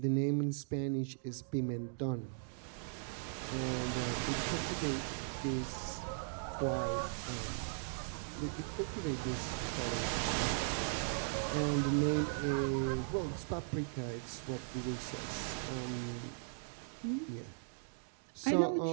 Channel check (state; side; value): silent; left; digital silence